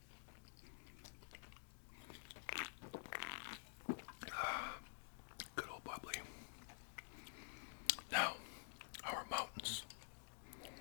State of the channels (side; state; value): right; silent; digital silence